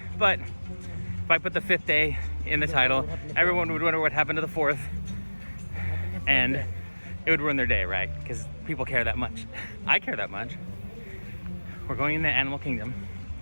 but if I put the 5th day in the title, everyone would wonder what happened to the 4th, and it would ruin their day, right? Because people care that much. I care that much. We're going into Animal Kingdom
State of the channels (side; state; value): both; inverted; correlation -1.00